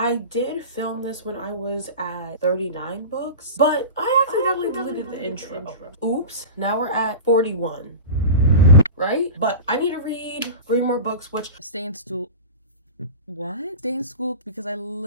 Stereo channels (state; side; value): inverted; both; correlation -0.30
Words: did film this when I was at 39 books, but I accidentally deleted the intro. Oops, now we're at 41, right? But I need to read 3 more books, which stay in school. What? Stay in school because I